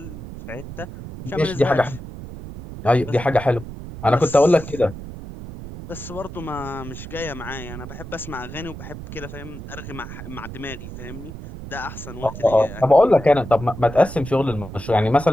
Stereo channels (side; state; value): right; noise; rumble, 11 dB below the sound